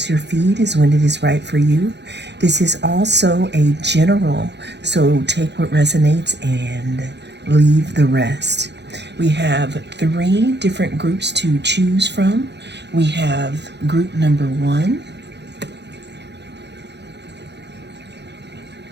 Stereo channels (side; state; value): left; late; 0.50 ms